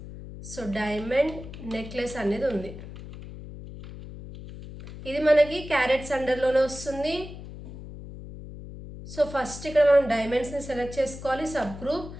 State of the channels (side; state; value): left; noise; hum, 13 dB below the sound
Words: So diamond necklace అనేది ఉంది. ఇది మనకి క్యారెట్స్ అండర్లోనే వస్తుంది. సో ఫస్ట్ ఇక్కడ మనం డైమండ్స్ని సెలెక్ట్ చేసుకోవాలి, సబ్ గ్రూప్.